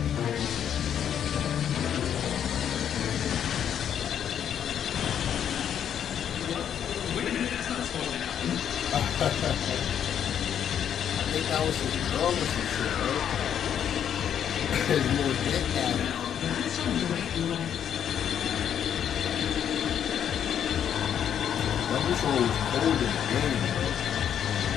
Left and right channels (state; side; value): quieter; right; 9.1 dB